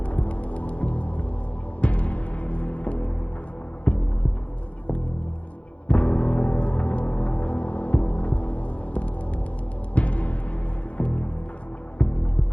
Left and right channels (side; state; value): right; late; 0.064 ms